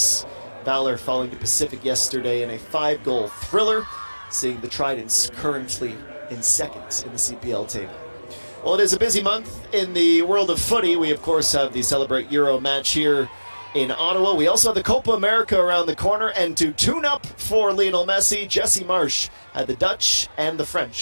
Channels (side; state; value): both; inverted; correlation -1.00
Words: Valor falling to Pacific yesterday in a 5-goal thriller, seeing the Tridents currently in 2nd in the CPL table. Well, it is a busy month in the world of footy. We, of course, have the Celebrate Euro match here in Ottawa. We also have the Copa America around the corner, and to tune up for Lionel Messi, Jesse Marsh had the Dutch and the